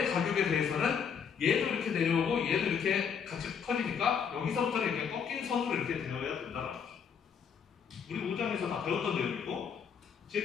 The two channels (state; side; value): quieter; right; 7.0 dB